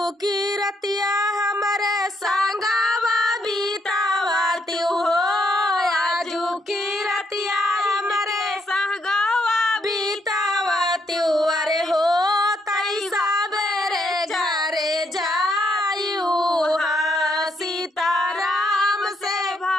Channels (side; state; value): both; normal; correlation 0.75